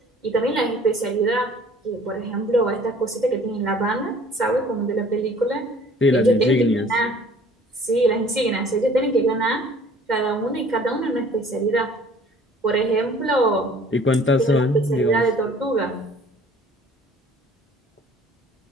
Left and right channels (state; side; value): normal; both; correlation 0.53